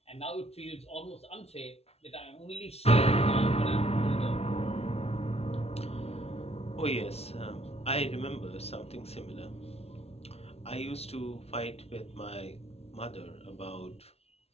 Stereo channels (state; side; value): late; right; 0.30 ms